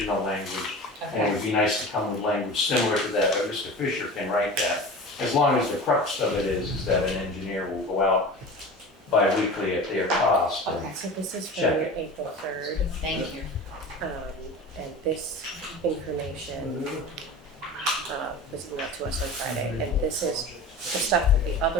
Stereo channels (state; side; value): normal; both; correlation 0.34